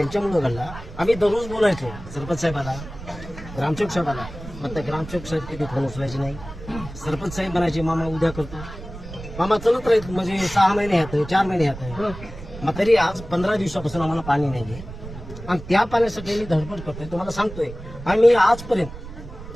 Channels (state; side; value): noise; right; rumble, 13 dB below the sound